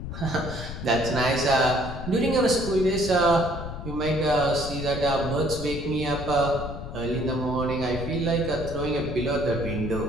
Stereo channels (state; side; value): noise; left; rumble, 8 dB below the sound